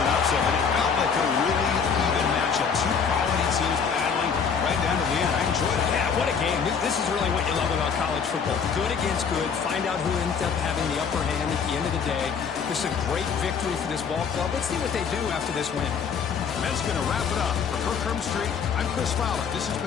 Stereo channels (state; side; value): quieter; right; 6.4 dB